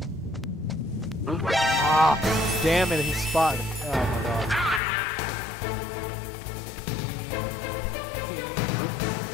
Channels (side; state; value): right; drops out; at 4.8 s